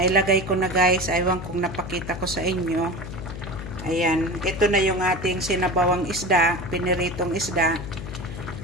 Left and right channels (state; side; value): noise; left; hum, 9 dB below the sound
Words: ko na guys, aywan kung napakita ko sa inyo. Ayan, ito na yung ating sinabawang isda, piniritong isda.